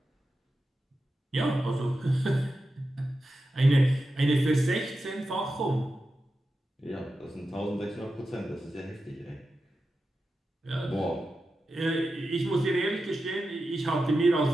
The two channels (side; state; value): both; normal; correlation 0.91